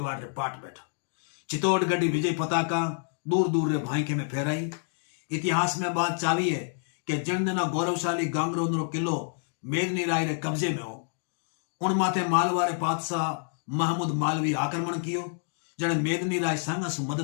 रे पाट बैठा। चित्तौड़ गढ़ी विजय पताका दूर दूर रे भाईके में फहराई। इतिहास में बात चावी है कि जन गौरवशाली गांगरों किलो मेदनी राय रे कब्जे में हो। उन माथे मालवा रे पातशाह महमूद मालवी आक्रमण कियो, जने मेदनी राय सांगा से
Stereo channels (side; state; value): right; silent; digital silence